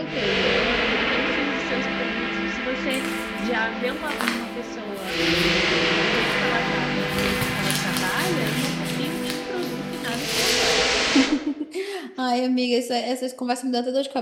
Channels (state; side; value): identical; both; correlation 1.00